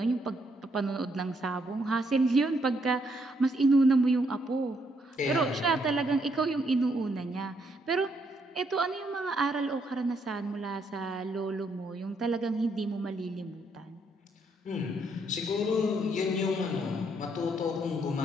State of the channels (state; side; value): normal; both; correlation 0.73